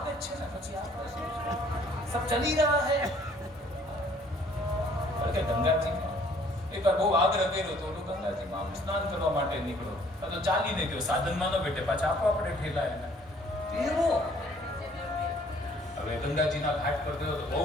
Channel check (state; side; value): normal; both; correlation 0.59